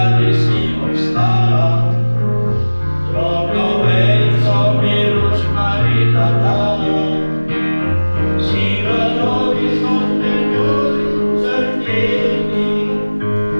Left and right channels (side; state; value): both; inverted; correlation -1.00